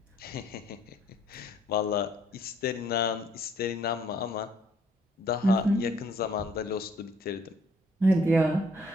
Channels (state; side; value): normal; both; correlation 0.63